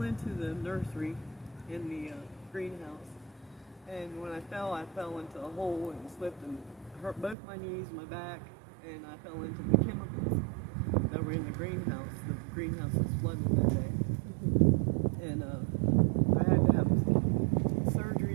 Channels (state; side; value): drops out; left; at 7.4 s